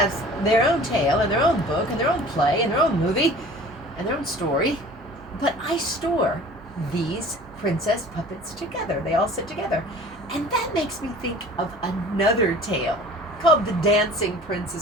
their own tale and their own book and their own play and their own movie and their own story. But I store these princess puppets together. They all sit together. And that makes me think of another tale called The Dancing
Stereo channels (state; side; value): normal; both; correlation 0.45